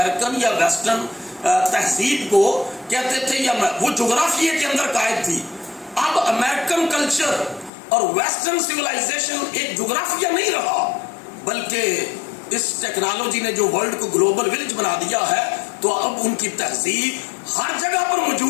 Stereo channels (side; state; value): right; drops out; at 7.7 s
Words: یا ویسٹرن تہذیب کو کہتے تھے یا وہ جغرافیے کے اندر قائد تھی، اب امریکن کلچر اور ویسٹرن سویلائزیشن ایک جغرافیہ نہیں رہا، بلکہ اس ٹیکنالوجی نے جو ورلڈ کو گلوبل ولیج بنا دیا ہے، تو اب ان کی تہذیب ہر جگہ پر